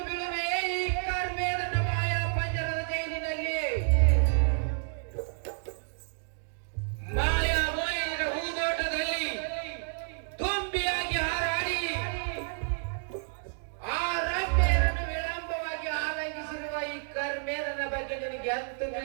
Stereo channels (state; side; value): silent; left; digital silence